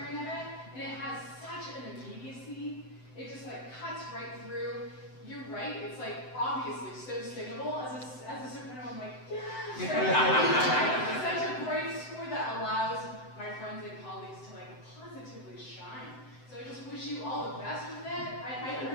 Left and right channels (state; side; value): late; right; 7.8 ms